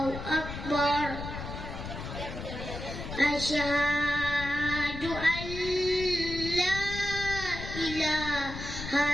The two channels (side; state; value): left; noise; rumble, 8 dB below the sound